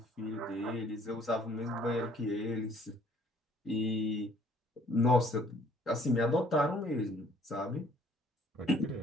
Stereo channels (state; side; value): normal; both; correlation 0.59